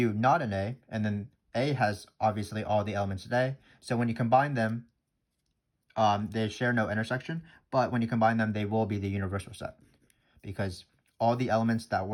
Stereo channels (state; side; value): identical; both; correlation 1.00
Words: not in A, and then A has obviously all the elements of A. So when you combine them, they share no intersection, but when you combine them, they will be the universal set, because all the elements that